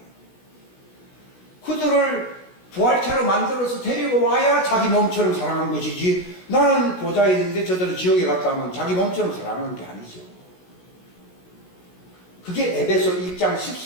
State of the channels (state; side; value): late; right; 16 ms